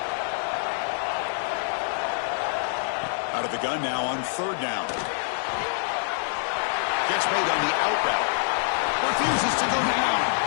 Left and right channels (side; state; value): right; silent; digital silence